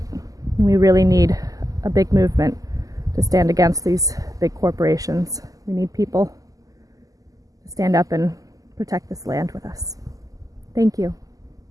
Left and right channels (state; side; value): late; left; 0.17 ms